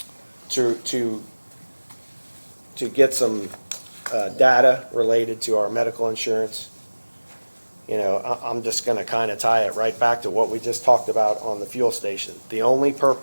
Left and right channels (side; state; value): both; inverted; correlation -1.00